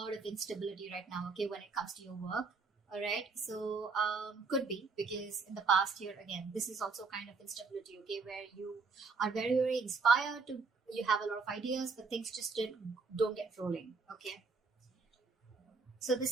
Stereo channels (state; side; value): quieter; left; 4.5 dB